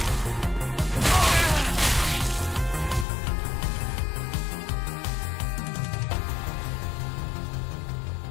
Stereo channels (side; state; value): right; drops out; at 3.1 s